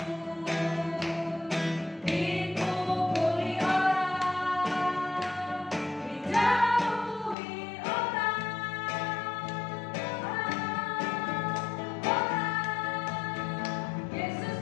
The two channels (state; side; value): drops out; right; at 7.4 s